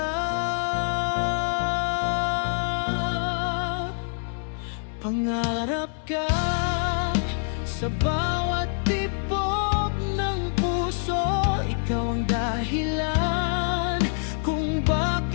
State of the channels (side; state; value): right; silent; digital silence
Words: Pangarap ka sa bawat tibok ng puso, ikaw ang dahilan kung